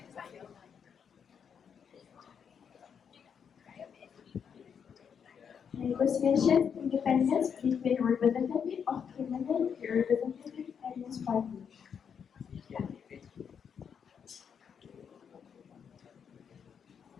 Negotiations independence between representative of criminal and representative against party.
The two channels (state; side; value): quieter; right; 7.2 dB